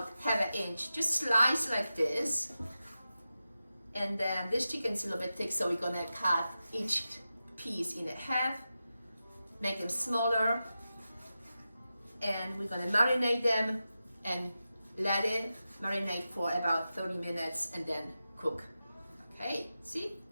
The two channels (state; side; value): inverted; both; correlation -0.92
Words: 1/2 inch. Just slice like this. And then this chicken is a little bit thick, so we're gonna cut each piece in half, make them smaller, and we're gonna marinate them and let it marinate for about 30 minutes and then cook. Okay, see?